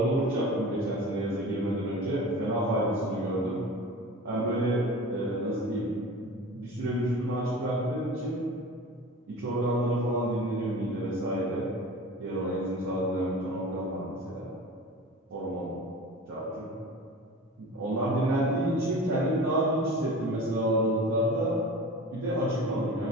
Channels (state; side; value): normal; both; correlation 0.37